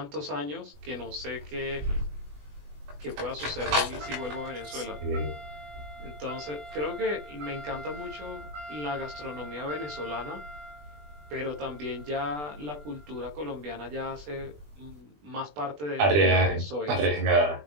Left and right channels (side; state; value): left; late; 20 ms